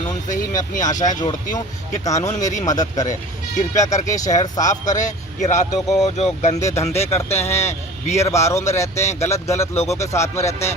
से ही मैं अपनी आशाएं जोड़ती हूँ कि कानून मेरी मदद करे। कृपया करके शहर साफ करे। कि रातों को जो गंदे धंधे करते हैं, बियर बारों में रहते हैं, गलत लोगों के साथ में रहते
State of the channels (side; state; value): both; normal; correlation 0.40